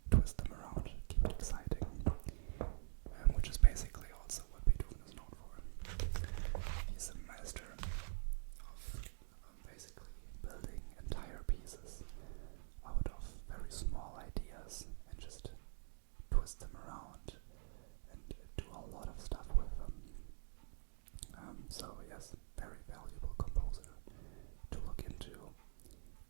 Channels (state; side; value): silent; left; digital silence